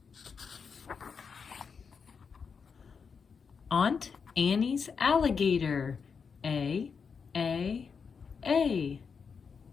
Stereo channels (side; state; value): right; quieter; 5.8 dB